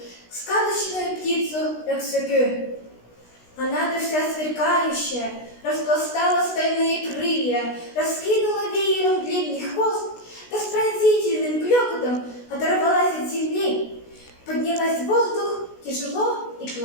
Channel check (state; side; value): late; right; 16 ms